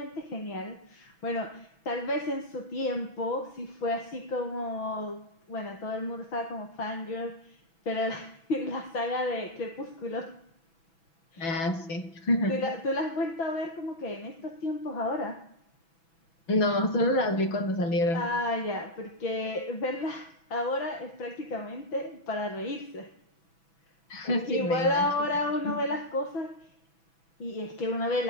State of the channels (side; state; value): right; late; 6.1 ms